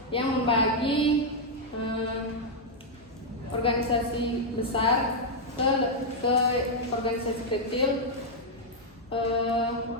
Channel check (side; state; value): both; normal; correlation -0.03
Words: yang membagi organisasi besar ke organisasi kecil